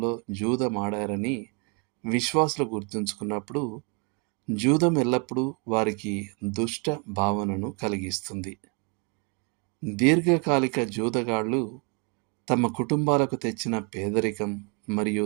జూదమాడారని విశ్వాసులు గుర్తుంచుకున్నప్పుడు జూదం ఎల్లప్పుడూ వారికి దుష్ట భావనను కలిగిస్తుంది. దీర్ఘకాలిక జూదగాళ్లు తమ కుటుంబాలకు తెచ్చిన పేదరికం మరియు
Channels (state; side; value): quieter; left; 34.0 dB